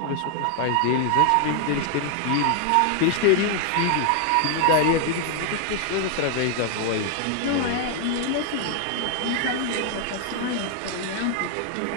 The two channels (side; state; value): both; different; correlation 0.00